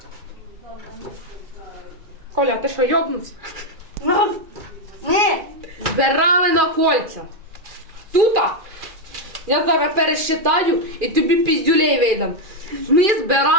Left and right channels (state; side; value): late; left; 2.4 ms